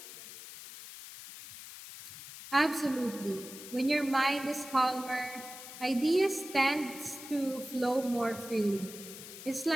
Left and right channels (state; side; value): noise; left; hiss, 13 dB below the sound